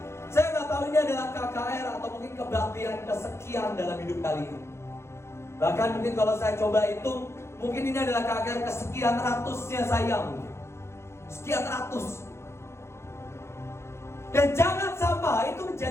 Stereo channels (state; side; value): late; right; 0.13 ms